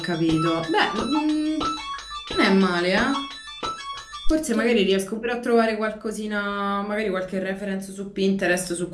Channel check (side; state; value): both; identical; correlation 1.00